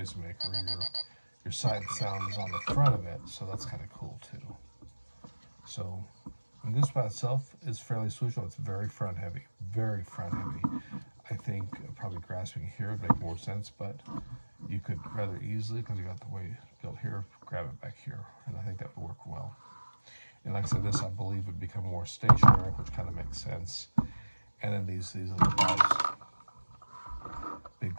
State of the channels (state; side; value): inverted; both; correlation -1.00